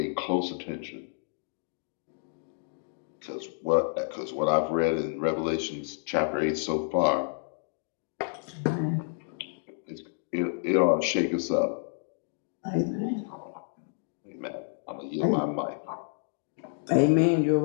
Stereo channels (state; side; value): silent; right; digital silence